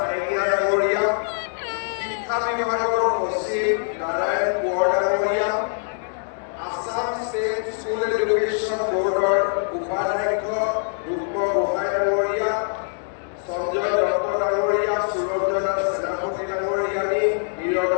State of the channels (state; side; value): silent; right; 63 dB below the other